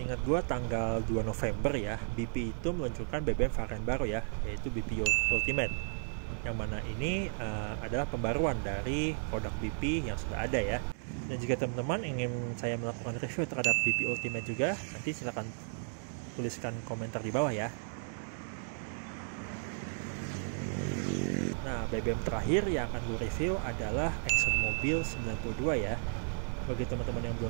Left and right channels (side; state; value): left; silent; 55 dB below the other